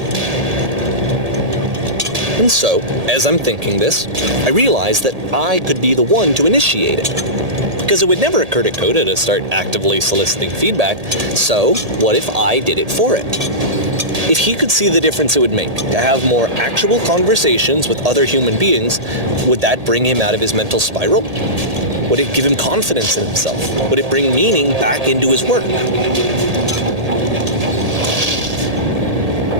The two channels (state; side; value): late; left; 1.8 ms